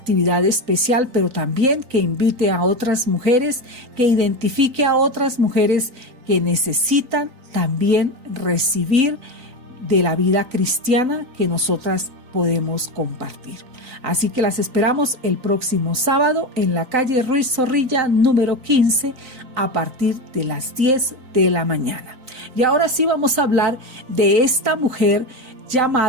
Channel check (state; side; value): late; left; 3.9 ms